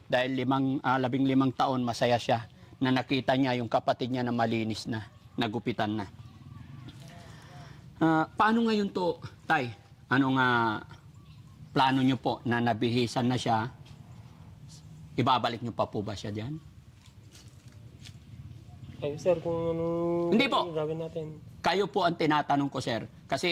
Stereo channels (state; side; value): identical; both; correlation 1.00